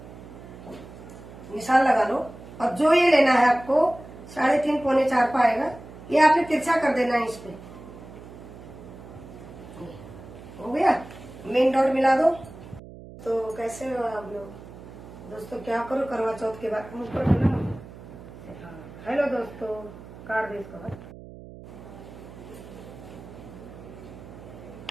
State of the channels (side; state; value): right; noise; hum, 16 dB below the sound